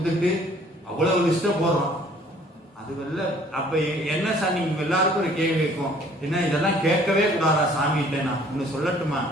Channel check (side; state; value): both; normal; correlation 0.56